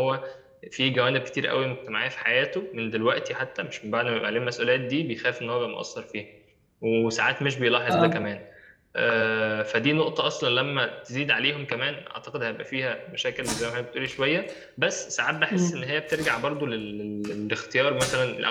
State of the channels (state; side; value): identical; both; correlation 1.00